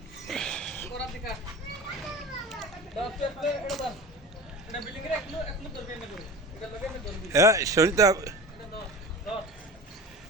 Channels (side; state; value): both; normal; correlation 0.34